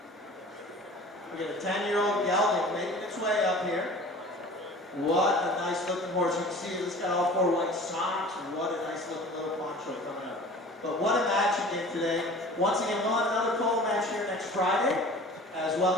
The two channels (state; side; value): normal; both; correlation 0.43